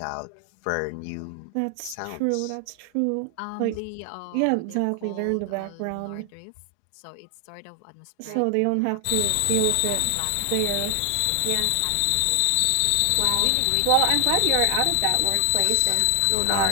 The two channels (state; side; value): different; both; correlation 0.00